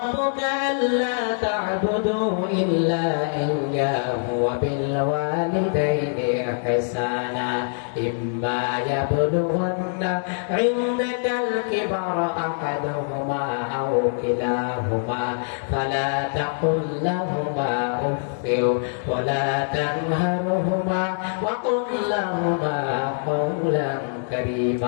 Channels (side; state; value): right; silent; 63 dB below the other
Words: أَلَّا تَعْبُدُوا إِلَّا إِيَّاهُ وَبِالْوَالِدَيْنِ إِحْسَانًا إِمَّا يَبْلُغَنَّ عِندَكَ الْكِبَرَ أَحَدُهُمَا أَوْ كِلَاهُمَا فَلَا تَقُل لَّهُمَا أُفٍّ وَلَا تَنْهَرْهُمَا وَقُل لَّهُمَا قَوْلًا